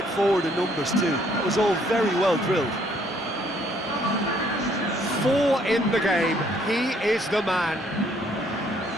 forward in numbers too. That was all very well drilled. 4 in the game. He is the man.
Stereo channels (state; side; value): normal; both; correlation 0.65